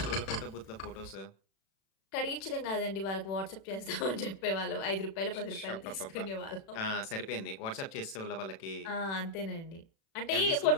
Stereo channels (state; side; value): late; right; 36 ms